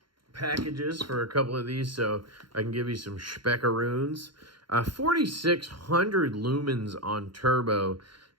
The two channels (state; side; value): late; left; 0.73 ms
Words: packages for a couple of these, so I can give you some speckaroons. 4,600 lumens on turbo.